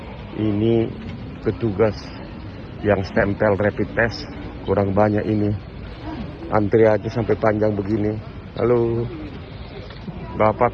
Ini petugas yang stempel rapid test kurang banyak ini. Antri aja sampai panjang begini. Halo Bapak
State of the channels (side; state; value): both; identical; correlation 1.00